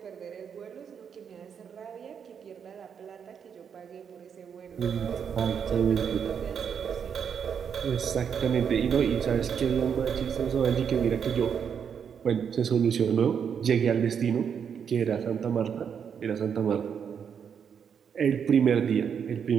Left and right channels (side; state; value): left; quieter; 7.4 dB